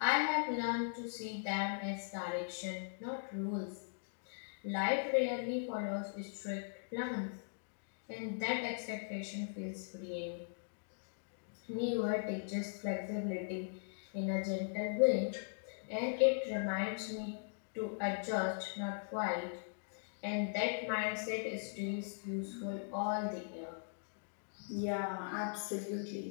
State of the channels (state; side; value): silent; right; digital silence